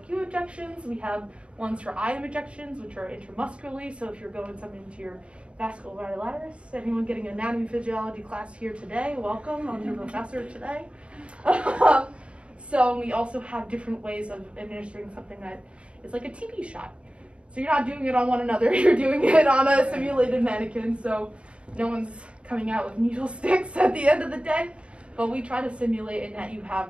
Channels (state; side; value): late; left; 0.059 ms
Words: injections. We have ones for IM injections, which are intramuscularly. So if you're going something into your vasculitis, anyone getting an anatomy physiology class here today, welcome. I'm your professor today. So we also have different ways of administering something that is like a TB shot. So you're not doing it on one another, you're doing it on a simulated mannequin. So no one's coming out with needle sticks at the end of the day, but we try to simulate in that you have